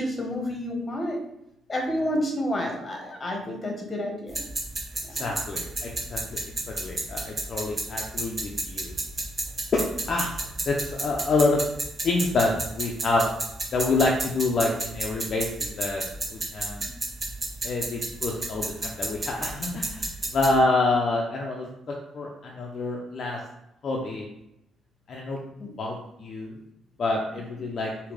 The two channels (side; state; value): both; normal; correlation 0.75